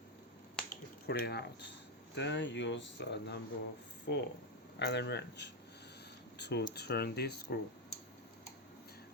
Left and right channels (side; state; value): both; normal; correlation 0.05